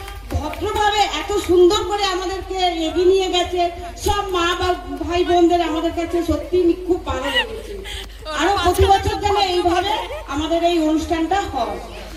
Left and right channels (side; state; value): both; identical; correlation 1.00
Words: ভদ্রভাবে এত সুন্দর করে আমাদেরকে এগিয়ে নিয়ে গেছে সব মা বা ভাই বোনদের, আমাদের কাছে সত্যি খুব ভালো লেগেছে। আরো প্রতি বছর যেন এইভাবে আমাদের এই অনুষ্ঠানটা হয়।